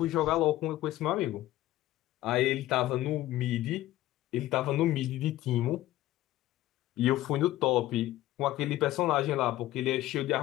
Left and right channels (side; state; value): right; quieter; 15.4 dB